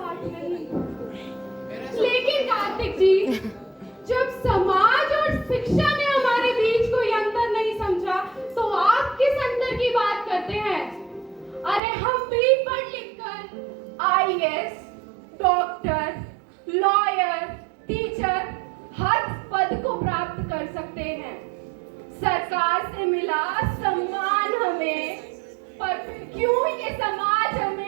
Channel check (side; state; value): left; drops out; at 11.8 s